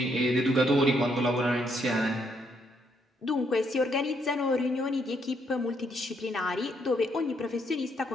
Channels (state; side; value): normal; both; correlation 0.73